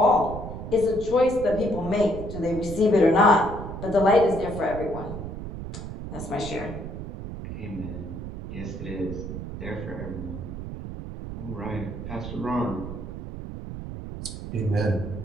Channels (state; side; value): noise; right; rumble, 8 dB below the sound